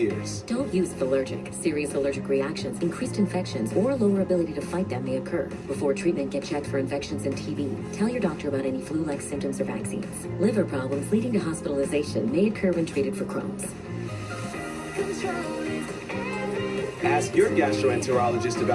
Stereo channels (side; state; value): both; identical; correlation 1.00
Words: Don't use Allergic. Serious allergic reactions, increased infections, or lower ability to fight them may occur. Before treatment, get checked for infections and TB. Tell your doctor about any flu-like symptoms or vaccines. Liver problems leading to hospitalization may occur when treated for Crohn's. Ask your gastroenterologist